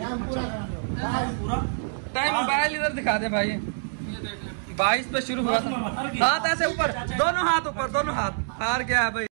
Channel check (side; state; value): left; silent; digital silence